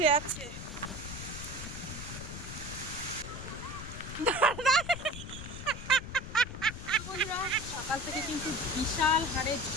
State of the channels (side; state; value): left; noise; rumble, 9 dB below the sound